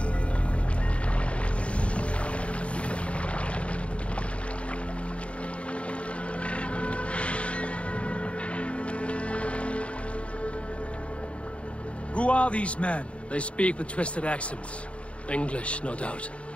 Who are these men? They speak with twisted accents. English, no doubt.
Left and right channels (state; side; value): late; right; 0.062 ms